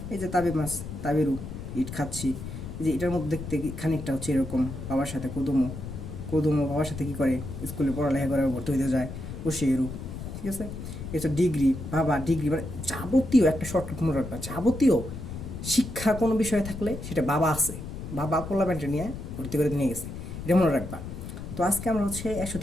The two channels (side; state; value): left; noise; rumble, 9 dB below the sound